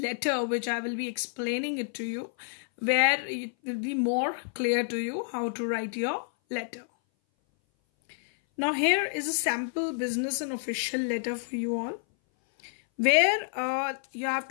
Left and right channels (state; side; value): silent; right; 58 dB below the other